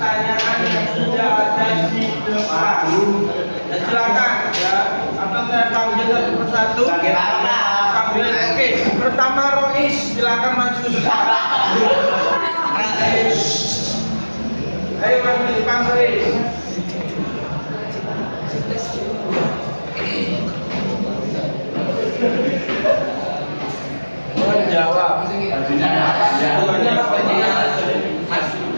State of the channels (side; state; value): both; inverted; correlation -1.00